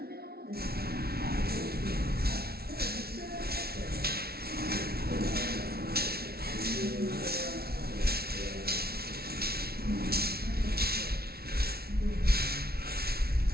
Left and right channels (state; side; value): late; left; 0.45 ms